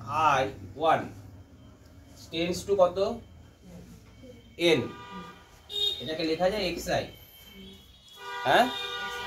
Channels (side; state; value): both; identical; correlation 1.00